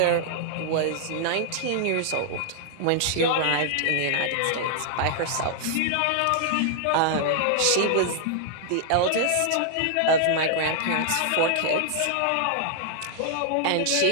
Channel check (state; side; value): different; both; correlation 0.00